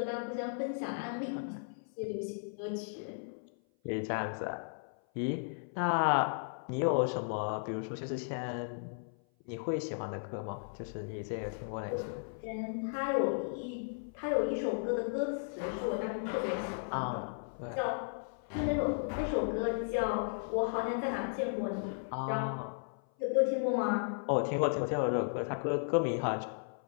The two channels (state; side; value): silent; right; 54 dB below the other